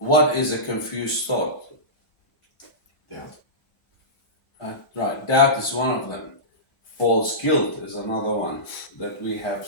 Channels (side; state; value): both; normal; correlation -0.20